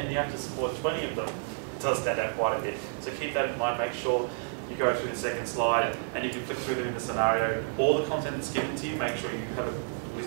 you have to support 20 of them. It does stand out quite a bit. So keep that in mind. Make sure you go through the second slide, and you can flip through them in the scenario. All the content that's given to you, make sure you have a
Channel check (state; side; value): silent; left; digital silence